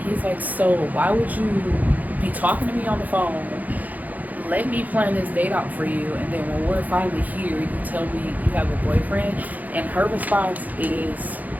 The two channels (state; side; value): late; left; 0.080 ms